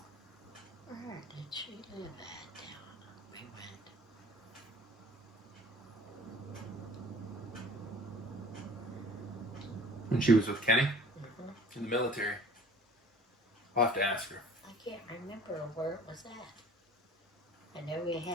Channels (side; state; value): both; normal; correlation 0.48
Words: Where did she live at down? We went. When she was with Kenny? In the military. I'll have to ask her. I can't remember where it was at. I know we